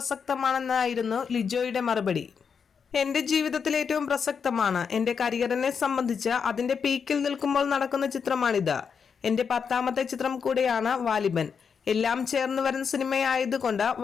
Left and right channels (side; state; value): right; quieter; 6.4 dB